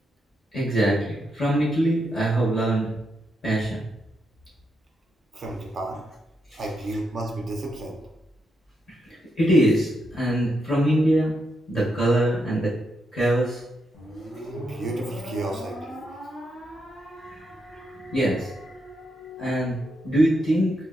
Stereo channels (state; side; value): normal; both; correlation 0.82